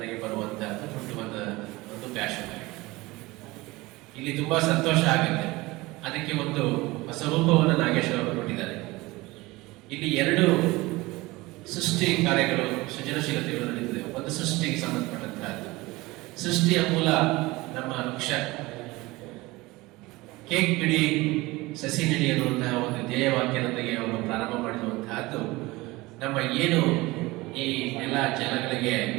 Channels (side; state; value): left; quieter; 21.1 dB